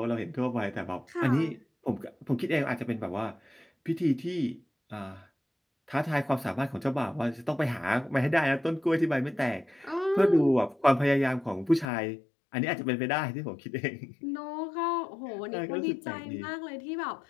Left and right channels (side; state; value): right; drops out; at 11.9 s